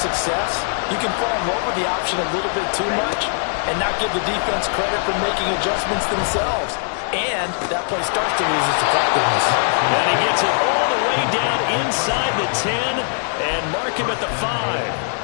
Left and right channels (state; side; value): silent; right; 65 dB below the other